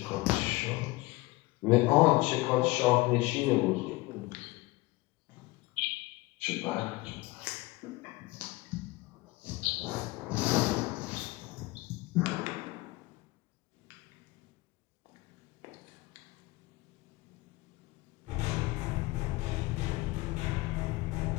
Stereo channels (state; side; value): quieter; right; 21.6 dB